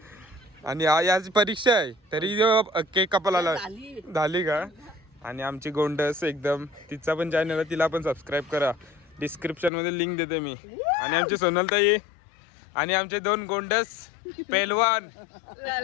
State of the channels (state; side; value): drops out; right; at 9.7 s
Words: आणि याची परीक्षा आहे तरी केक कापायला झाली का. आणि आमची गोंडस एकदम तिचा पण चॅनल आहे. तिला पण सबस्क्राईब करा. डिस्क्रिप्शन मध्ये लिंक देते मी. आणि आमची सोनलताई आणि आमचे 2 गोंडस पेलवान.